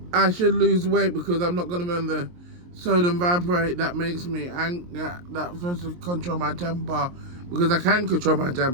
I should lose weight, because I'm not going to be on the sodium valproate that makes me that's supposed to control my temper, because I can control my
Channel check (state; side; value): late; left; 23 ms